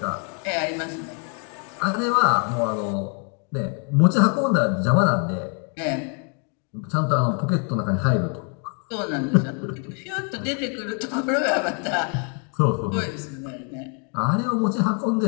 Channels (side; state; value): right; quieter; 39.6 dB